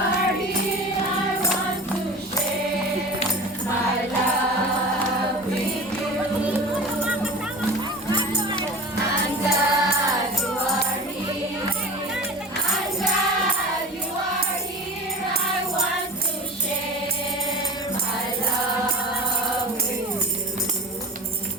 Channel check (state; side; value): normal; both; correlation 0.35